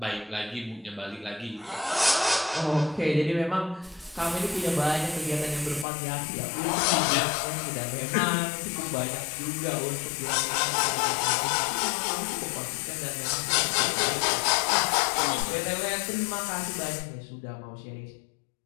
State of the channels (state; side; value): drops out; right; at 5.9 s